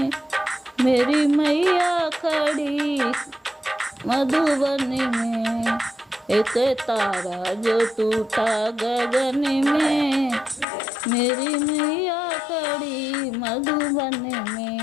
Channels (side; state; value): right; drops out; at 10.7 s